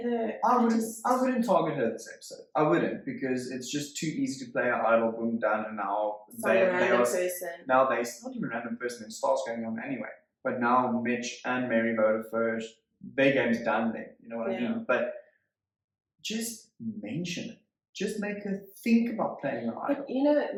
her. I wouldn't target her this episode. I wouldn't, because it's just too easy to play an idol, boom, done, and now now it's not even a random person. It starts going on anyway. But now Mitch and Mary voted first. Their game's done then. You know what I mean? But just mention it. Just make her think about playing an idol. But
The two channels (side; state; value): both; identical; correlation 1.00